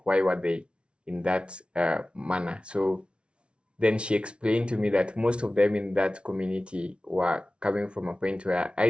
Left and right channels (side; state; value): left; late; 0.058 ms